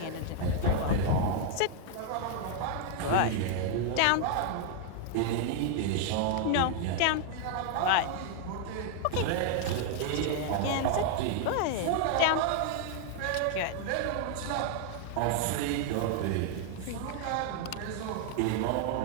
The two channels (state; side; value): different; both; correlation 0.00